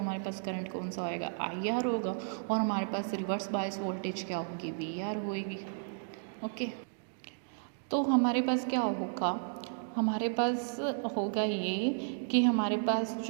हमारे पास करंट कौन सा होएगा, IR होगा, और हमारे पास रिवर्स बायस वोल्टेज क्या होगी, VR होएगी। ओके, तो हमारे पास क्या होगा, हमारे पास होगा ये कि हमारे पास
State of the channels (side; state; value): left; silent; digital silence